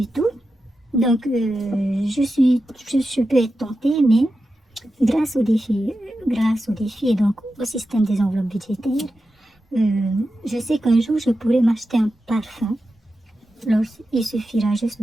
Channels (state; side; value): normal; both; correlation 0.91